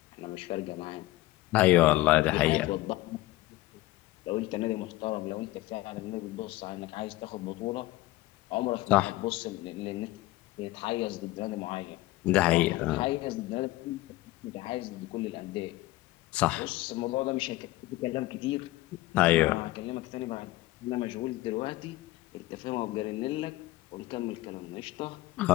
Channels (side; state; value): right; quieter; 18.1 dB